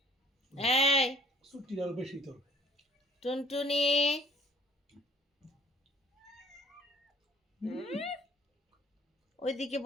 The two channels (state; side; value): normal; both; correlation 0.56